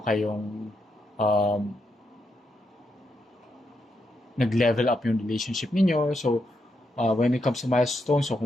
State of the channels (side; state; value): both; normal; correlation 0.81